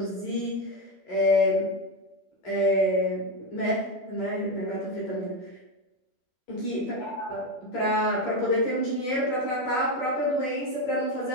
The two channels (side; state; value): right; late; 12 ms